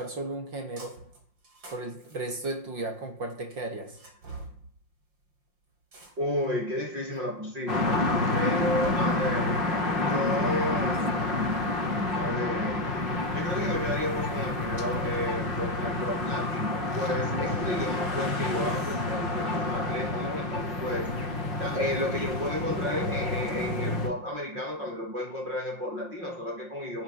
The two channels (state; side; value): late; left; 5.5 ms